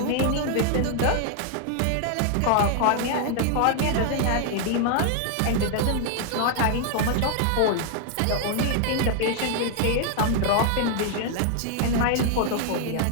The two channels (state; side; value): different; both; correlation 0.00